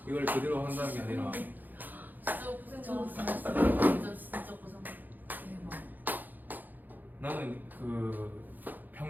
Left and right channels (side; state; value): left; late; 0.086 ms